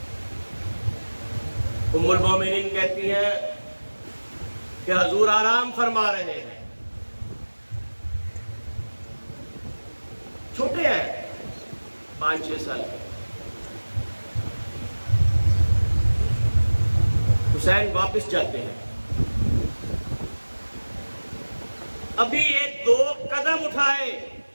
ام المومنین کہتی ہیں کہ حضور آرام فرما رہے ہیں، چھوٹے ہیں 5-6 سال کے۔ حسین واپس جاتے ہیں، ابھی ایک 2 قدم اٹھائے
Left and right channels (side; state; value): both; inverted; correlation -1.00